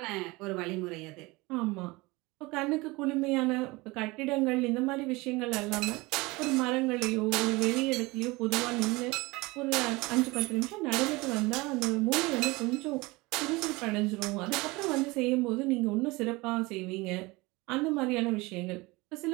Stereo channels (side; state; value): left; quieter; 23.1 dB